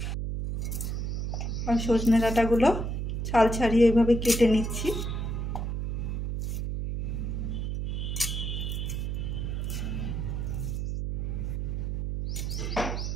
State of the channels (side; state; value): right; noise; hum, 2 dB below the sound